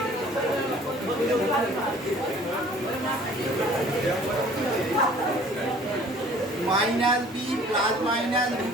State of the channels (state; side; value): normal; both; correlation 0.52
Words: minus B plus minus